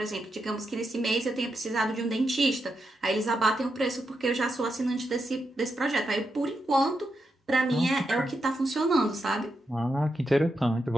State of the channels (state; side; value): normal; both; correlation 0.85